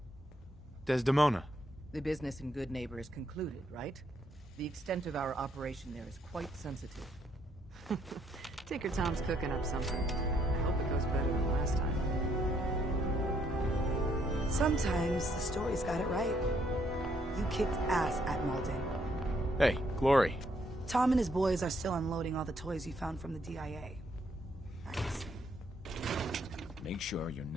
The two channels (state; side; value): normal; both; correlation 0.71